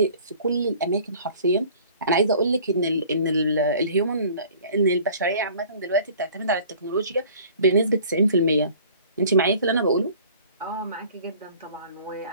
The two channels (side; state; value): both; inverted; correlation -0.49